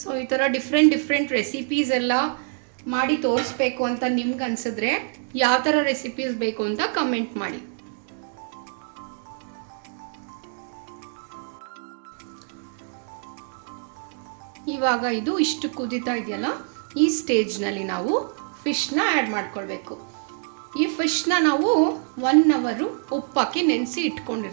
ಸೊ ಈ ಥರ ಡಿಫ್ರೆಂಟ್ ರೆಸಿಪೀಸ್ ಎಲ್ಲ ಮಾಡಿ ತೋರಿಸ್ಬೇಕು ಅಂತ ನಿಮ್ಗೆ ಅನ್ಸಿದ್ರೆ ಯಾವ ಥರ ರೆಸಿಪೀಸ್ ಬೇಕು ಅಂತ ಕಮೆಂಟ್ ಮಾಡಿ. ಇವಾಗ ಇದು ಇಷ್ಟು ಕುದೀತಾ ಇದೆಯಲ್ಲ, ಈ ಸ್ಟೇಜ್ನಲ್ಲಿ ನಾವು ಫಿಶ್ನ ಆ್ಯಡ್ ಮಾಡ್ಕೊಳ್ಬೇಕು. ಈ ಫಿಶ್ನ ನಾವು 1 ಅವರು ಉಪ್ಪಾಕಿ ನೆನೆಸಿ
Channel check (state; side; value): silent; left; 62 dB below the other